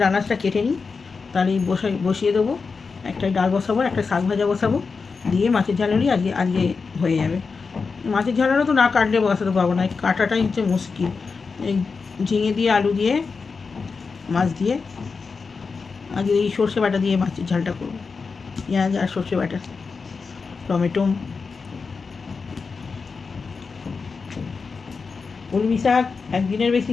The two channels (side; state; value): right; quieter; 4.8 dB